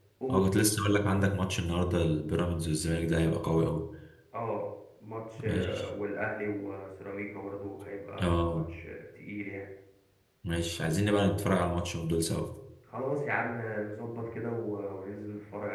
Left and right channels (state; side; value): identical; both; correlation 1.00